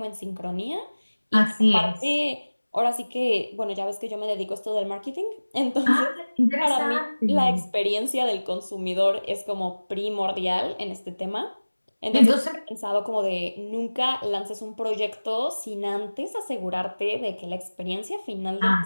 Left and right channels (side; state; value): both; inverted; correlation -1.00